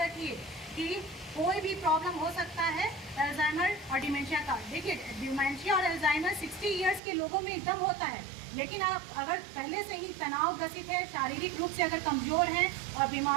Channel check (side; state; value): left; drops out; at 7.0 s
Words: कि कोई भी प्रॉब्लम हो सकता है अल्जाइमर और डिमेंशिया का। देखिए, डिमेंशिया और अल्जाइमर 60 इयर्स के लोगों में एकदम होता है, लेकिन आप अगर पहले से ही तनाव ग्रसित है, शारीरिक रूप से अगर कमज़ोर हैं और